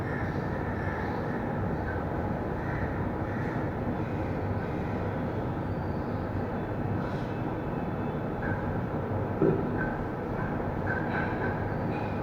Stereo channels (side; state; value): both; identical; correlation 1.00